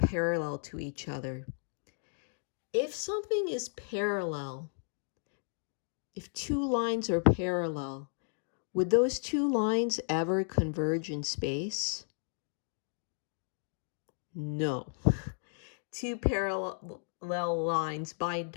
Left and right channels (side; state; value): right; silent; digital silence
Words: to each other. If something is parallel, if two lines are parallel, would those two lines ever converge in space? No. Two parallel lines, by